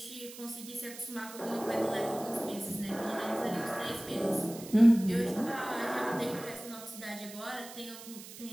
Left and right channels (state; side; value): noise; right; hiss, 14 dB below the sound